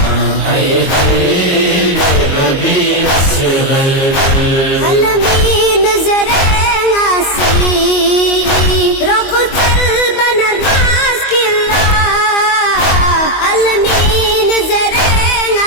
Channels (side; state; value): right; late; 22 ms